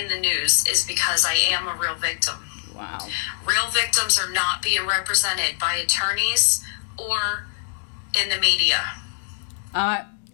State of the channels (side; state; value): right; silent; digital silence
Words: the news is because I am a real victim. Wow. Real victims are not being represented by attorneys or in the media.